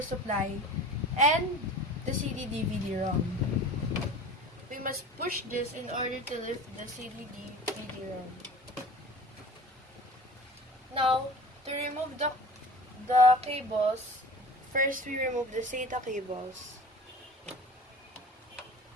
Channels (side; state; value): both; normal; correlation 0.40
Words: supply and the CD-DVD-ROM. We must push this in order to lift the CD-DVD-ROM. Now, to remove the cables, first we remove the SATA cables,